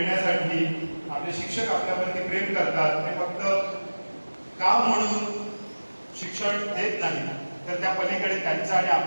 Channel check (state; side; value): inverted; both; correlation -1.00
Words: आपले शिक्षक आपल्यावरती प्रेम करतात. ते फक्त काम म्हणून शिक्षण देत नाही, तर त्या पलीकडे त्यांचं आणि